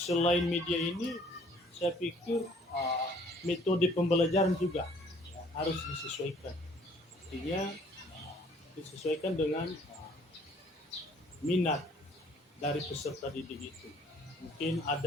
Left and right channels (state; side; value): normal; both; correlation 0.58